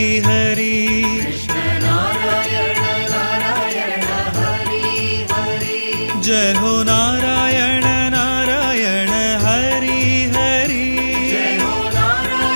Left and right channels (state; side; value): inverted; both; correlation -1.00